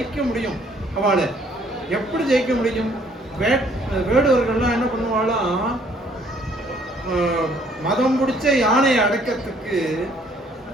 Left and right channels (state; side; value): normal; both; correlation 0.62